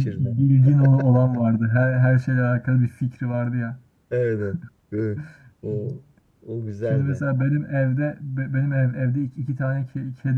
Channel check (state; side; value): identical; both; correlation 1.00